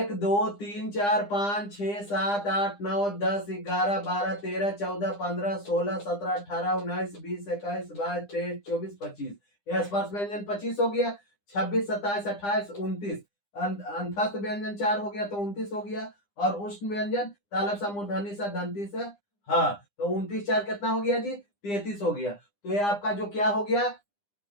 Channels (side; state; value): right; late; 9.9 ms